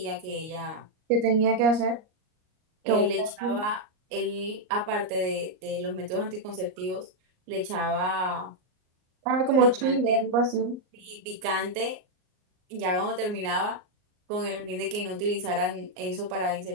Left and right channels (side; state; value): left; late; 38 ms